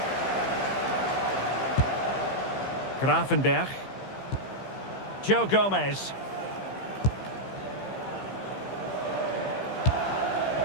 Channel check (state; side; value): late; right; 15 ms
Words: Gravenberg. Joe Gomez.